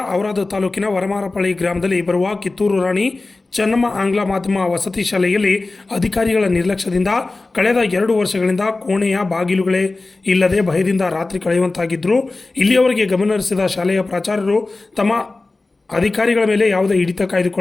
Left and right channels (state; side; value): quieter; right; 3.3 dB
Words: ಔರಾದ್ ತಾಲೂಕಿನ ವನಮಾರಪ್ಪಳಿ ಗ್ರಾಮದಲ್ಲಿ ಬರುವ ಕಿತ್ತೂರು ರಾಣಿ ಚೆನ್ನಮ್ಮ ಆಂಗ್ಲ ಮಾಧ್ಯಮ ವಸತಿ ಶಾಲೆಯಲ್ಲಿ ಅಧಿಕಾರಿಗಳ ನಿರ್ಲಕ್ಷ್ಯದಿಂದ ಕಳೆದ 2 ವರ್ಷಗಳಿಂದ ಕೋಣೆಯ ಬಾಗಿಲುಗಳೇ ಇಲ್ಲದೆ ಭಯದಿಂದ ರಾತ್ರಿ ಕಳೆಯುವಂತಾಗಿದ್ದರು. ಇಲ್ಲಿಯವರೆಗೆ ಗಮನಹರಿಸಿದ ಶಾಲೆಯ ಪ್ರಾಚಾರ್ಯರು ತಮ್ಮ ಅಧಿಕಾರಿಗಳ ಮೇಲೆ ಯಾವುದೇ ಹಿಡಿತ